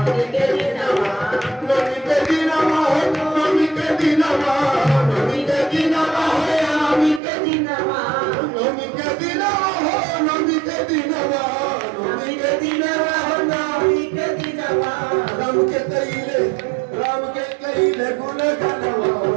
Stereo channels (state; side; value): drops out; left; at 7.2 s